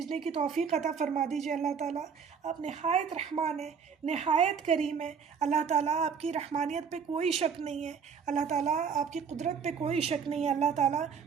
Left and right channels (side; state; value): left; quieter; 6.4 dB